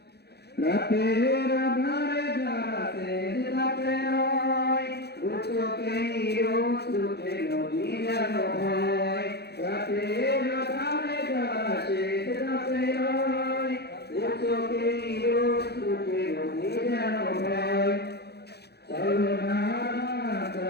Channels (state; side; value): late; right; 0.48 ms